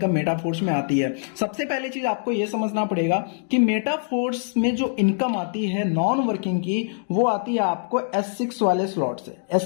मेटाफोर्स में आती है। सबसे पहली चीज आपको यह समझना पड़ेगा कि मेटाफोर्स में जो इनकम आती है नॉन वर्किंग की, वो आती है आपको S6 वाले स्लॉट से।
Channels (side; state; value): right; silent; digital silence